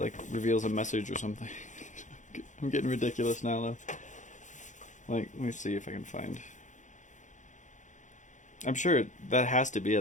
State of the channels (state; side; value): late; right; 0.36 ms